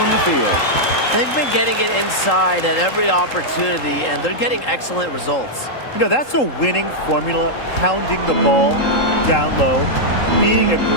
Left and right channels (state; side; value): late; right; 3.8 ms